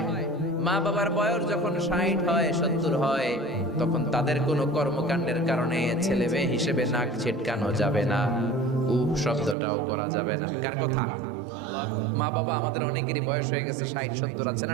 মা বাবার বয়স যখন 60 হয় 70 হয়, তখন তাদের কোনো কর্মকাণ্ডের কারণে ছেলে মেয়ে হিসেবে নাক ছিটকানো যাবে না, শব্দটাও করা যাবে না। কার কথা? মা বাবা আমাদের অনেকেরই বয়স হয়ে গেছে 60-70, আছে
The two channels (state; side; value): drops out; left; at 9.6 s